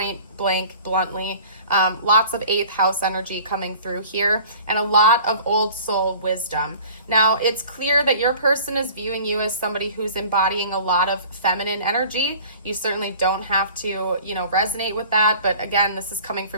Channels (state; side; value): inverted; both; correlation -0.46